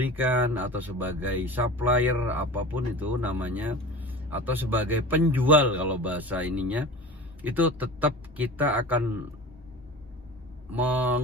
atau sebagai supplier apapun itu namanya, atau sebagai penjual kalau bahasa ininya, itu tetap kita akan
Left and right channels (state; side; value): normal; both; correlation 0.35